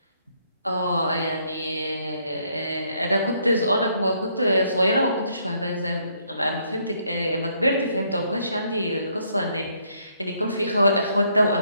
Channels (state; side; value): inverted; both; correlation -0.70